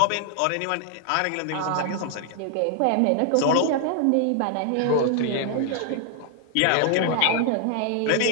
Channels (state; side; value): different; both; correlation 0.00